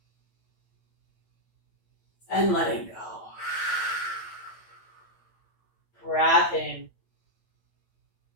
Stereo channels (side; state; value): right; late; 9.0 ms